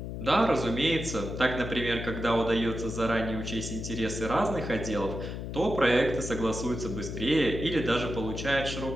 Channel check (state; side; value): noise; left; hum, 6 dB below the sound